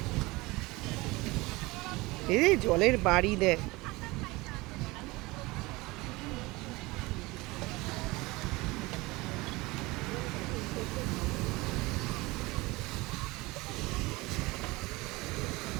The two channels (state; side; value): quieter; left; 22.3 dB